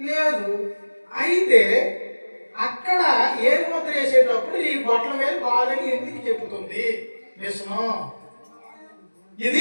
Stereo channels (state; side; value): inverted; both; correlation -1.00